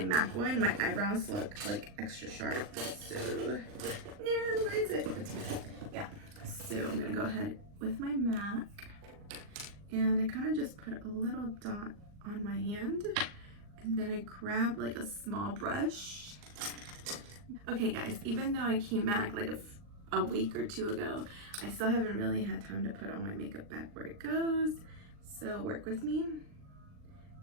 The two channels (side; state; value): left; late; 39 ms